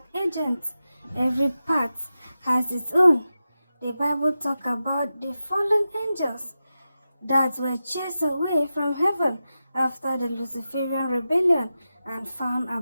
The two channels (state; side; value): inverted; both; correlation -0.92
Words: agents. Every part has its own. The Bible talks about the fallen angels that were chased away from heaven after the Luciferian rebellion and found